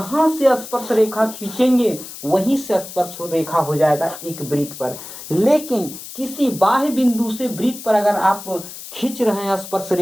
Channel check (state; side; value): noise; left; hiss, 13 dB below the sound